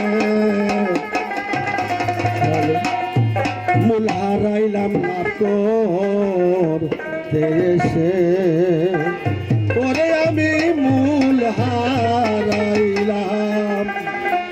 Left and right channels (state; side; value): identical; both; correlation 1.00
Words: মূল হারাইলাম না তোর দেশে, পরে আমি মূল হারাইলাম